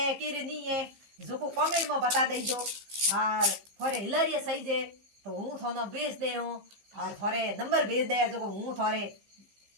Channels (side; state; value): left; late; 15 ms